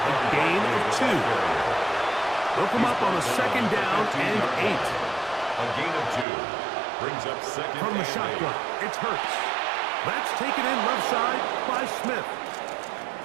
gain of 2. They'll come up on a second down and 8. A gain of 2 brings up second. From the shotgun, it's Hurts. That's taken in left side by Smith.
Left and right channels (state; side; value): drops out; left; at 6.2 s